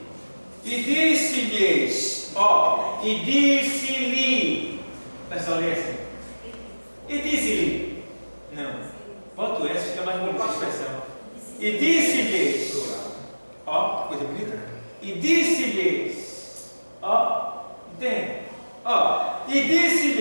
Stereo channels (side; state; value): both; inverted; correlation -1.00